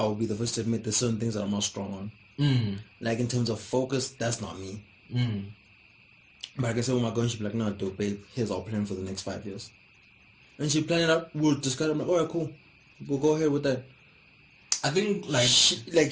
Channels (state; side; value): identical; both; correlation 1.00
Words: be the first to admit there's certain things that I'm not strong on. Like, in terms of focus, that's not me. But I can say, with my girl, she'll be like, no, dude, babe, here's our plan for the next 5 years. And she planned it out. We'll discuss it. I'm like, alright, cool. We'll go ahead with that. I think, like...